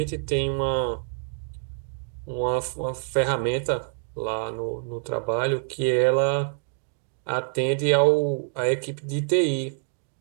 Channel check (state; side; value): silent; left; digital silence